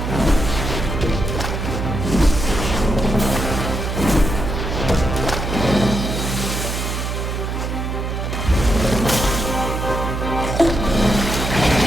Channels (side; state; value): right; noise; hum, 3 dB below the sound